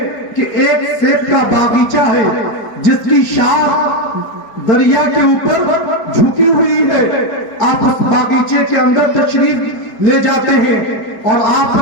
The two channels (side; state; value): right; late; 4.8 ms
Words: کہ ایک سیب کا باغیچہ ہے جس کی شاخ دریا کے اوپر جھکی ہوئی ہے۔ آپ اس باغیچے کے اندر تشریف لے جاتے ہیں اور آپ